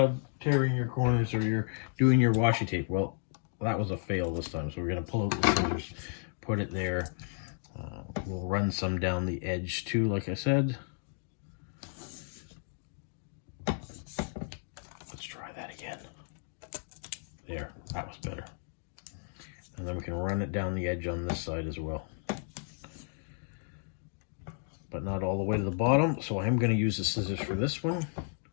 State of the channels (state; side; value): silent; right; 56 dB below the other